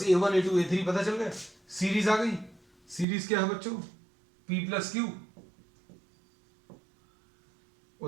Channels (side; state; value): left; drops out; at 3.1 s